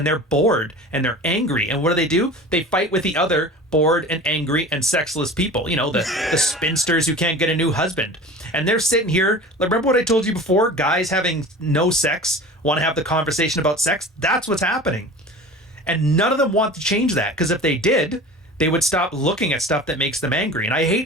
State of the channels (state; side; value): normal; both; correlation 0.38